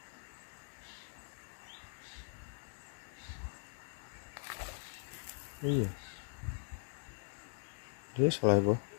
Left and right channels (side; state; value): right; silent; digital silence